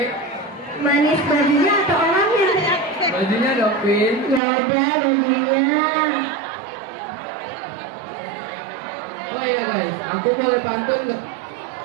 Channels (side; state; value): left; drops out; at 4.4 s